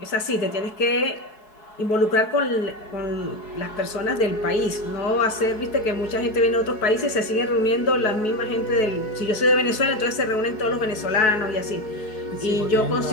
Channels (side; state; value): right; late; 4.7 ms